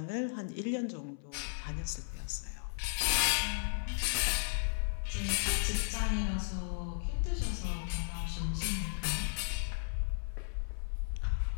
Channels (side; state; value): right; silent; 54 dB below the other